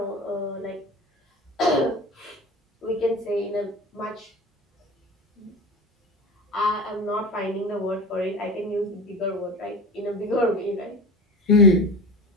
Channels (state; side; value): normal; both; correlation 0.31